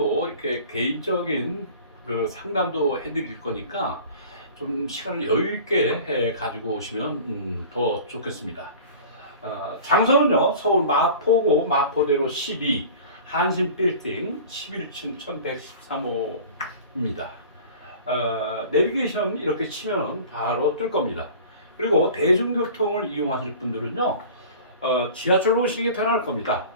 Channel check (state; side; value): inverted; both; correlation -0.41